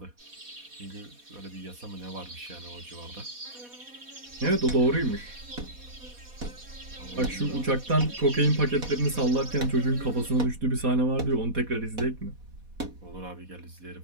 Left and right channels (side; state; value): left; late; 4.1 ms